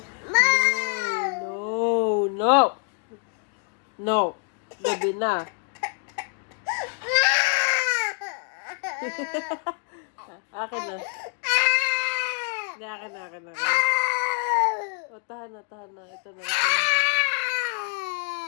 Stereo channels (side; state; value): right; quieter; 40.0 dB